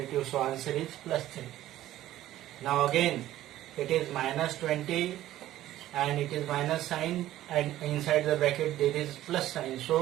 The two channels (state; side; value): quieter; left; 14.0 dB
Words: so answer is plus 3. Now again, it is minus 20 and it is minus sign, and inside the bracket there is plus sign.